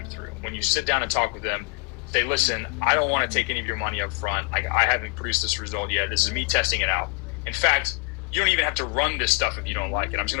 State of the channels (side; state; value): right; quieter; 35.5 dB